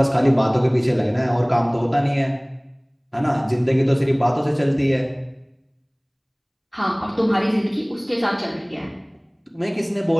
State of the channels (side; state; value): both; identical; correlation 1.00